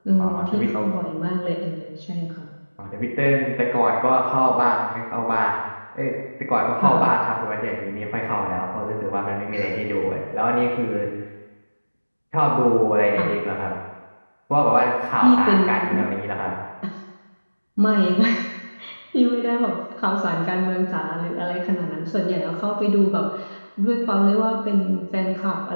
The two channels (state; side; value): inverted; both; correlation -1.00